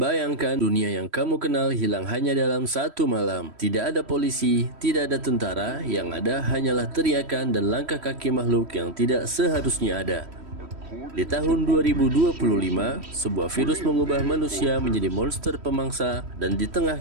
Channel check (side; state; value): left; late; 3.1 ms